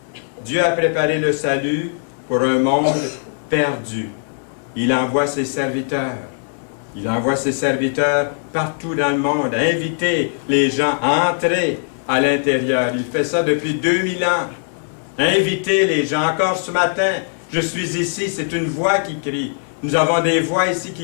Dieu a préparé le salut pour un monde perdu. Il envoie ses serviteurs. Il envoie ses serviteurs partout dans le monde, inviter les gens à entrer à l'intérieur. Il fait ça depuis 2000 ans. Inviter les gens. Encore ce matin, je suis ici, c'est une voix qui crie. Nous avons des voix ici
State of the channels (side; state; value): right; silent; digital silence